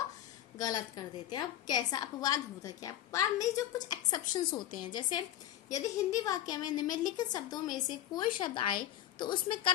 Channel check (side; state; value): right; quieter; 12.4 dB